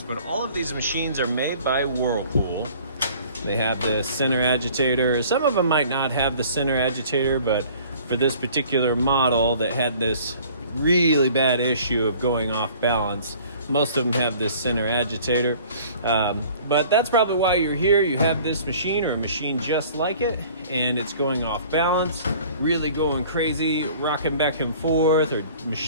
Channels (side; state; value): both; inverted; correlation -0.50